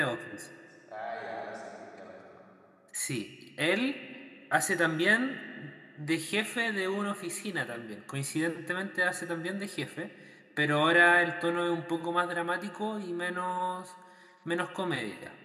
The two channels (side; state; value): both; identical; correlation 1.00